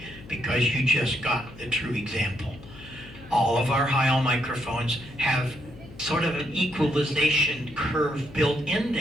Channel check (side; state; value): left; noise; hum, 18 dB below the sound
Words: Because you just got the true example. All of our high-all microphones have sort of an equalization curve built in